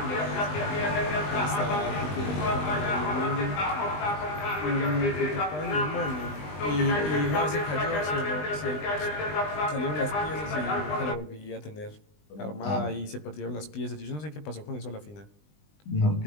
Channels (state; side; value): late; right; 20 ms